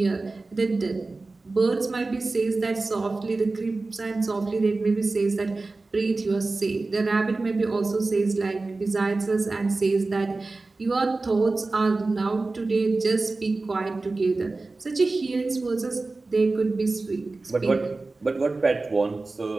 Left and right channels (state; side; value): quieter; left; 3.5 dB